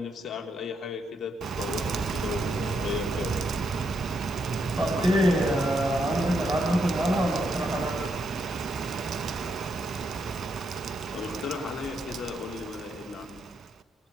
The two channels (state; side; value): normal; both; correlation 0.79